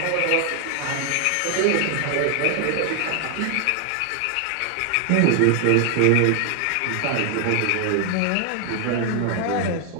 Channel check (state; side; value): different; both; correlation 0.00